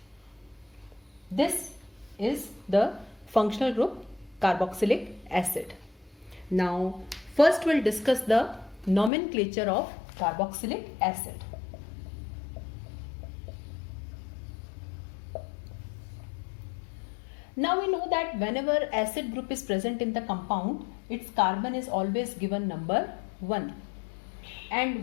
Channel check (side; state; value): right; drops out; at 9.1 s